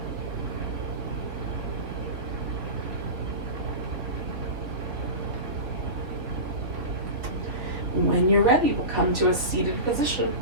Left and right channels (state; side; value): late; left; 3.2 ms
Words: you're ready, we'll come to a seated position.